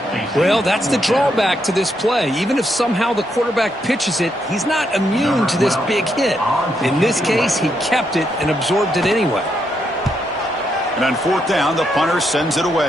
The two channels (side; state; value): both; normal; correlation 0.79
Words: Well, that's the drawback to this play. Even if somehow the quarterback pitches it, he's not immune to this big hit. In this case, he kept it and absorbed it anyway. And on 4th down, the punter sends it